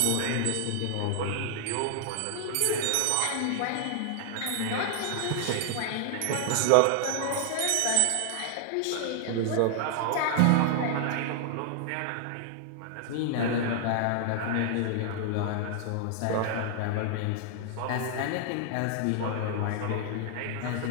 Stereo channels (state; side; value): different; both; correlation 0.00